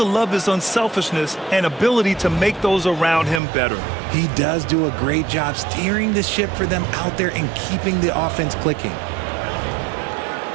love his unselfishness and ability to make those around him better. He does do a great job steering the ship for them out there and keeping the offense clicking.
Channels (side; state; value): left; drops out; at 3.4 s